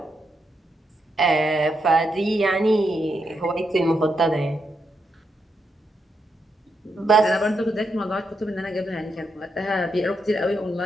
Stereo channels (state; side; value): normal; both; correlation 0.82